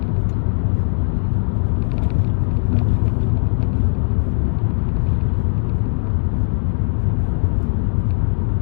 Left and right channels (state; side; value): silent; right; digital silence